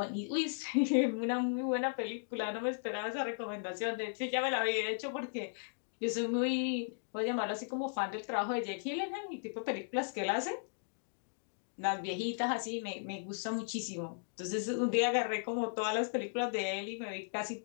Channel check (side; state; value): right; silent; digital silence